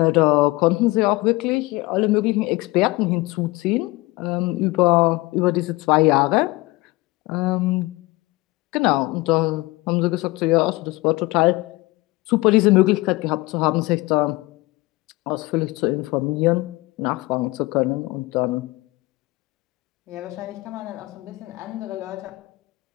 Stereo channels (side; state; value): right; quieter; 21.4 dB